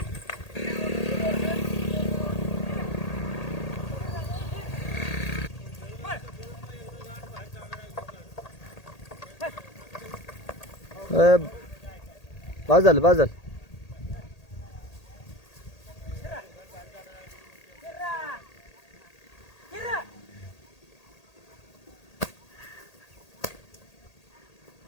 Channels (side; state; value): right; late; 1.8 ms